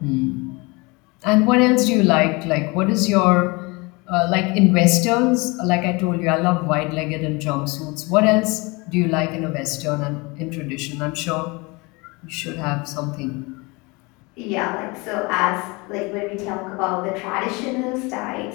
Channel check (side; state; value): right; quieter; 26.4 dB